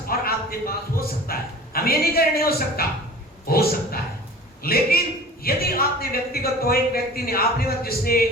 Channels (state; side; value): normal; both; correlation 0.42